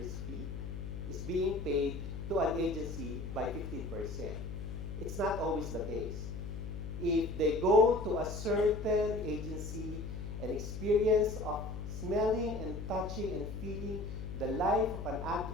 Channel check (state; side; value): noise; left; hum, 6 dB below the sound